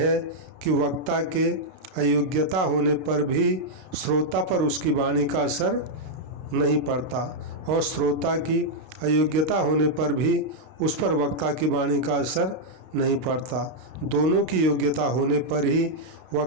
कि वक्ता के अयोग्यता होने पर भी श्रोता पर उसकी वाणी का असर नहीं पड़ता और श्रोता की अयोग्यता होने पर भी उस पर वक्ता की वाणी का असर नहीं पड़ता। दोनों की योग्यता होने पर ही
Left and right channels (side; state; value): left; late; 32 ms